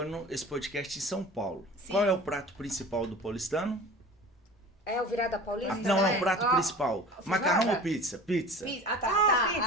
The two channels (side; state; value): both; normal; correlation 0.40